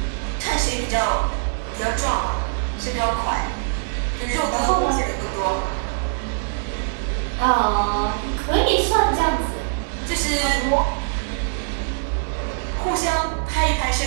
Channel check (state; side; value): silent; left; digital silence